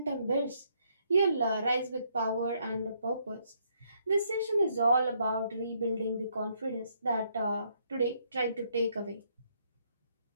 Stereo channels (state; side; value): inverted; both; correlation -0.72